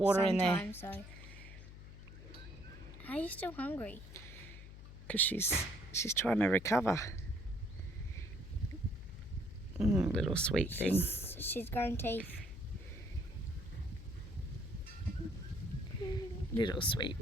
in there. So. Are you still hungry? Because she's trying to recover. Little sweet thing. She's growing teeth. Little sweet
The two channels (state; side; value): noise; left; hum, 14 dB below the sound